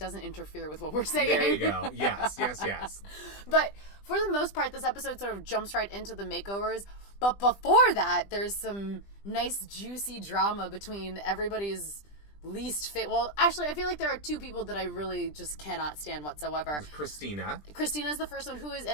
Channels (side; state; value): right; late; 20 ms